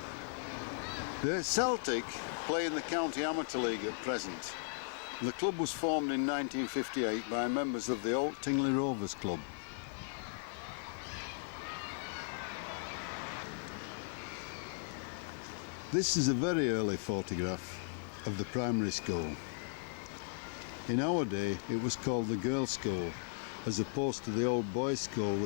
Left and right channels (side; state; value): right; silent; 53 dB below the other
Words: The Celtic play in the County Amateur League at present. The club was formed in 1958 by members of the Old Tingley Rovers Club. This is a very early photograph of the primary school. In our day it was called the Girls' School, as opposed to the old boys' school